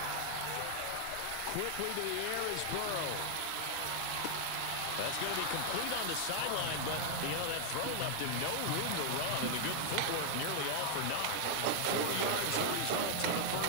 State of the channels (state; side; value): different; both; correlation 0.00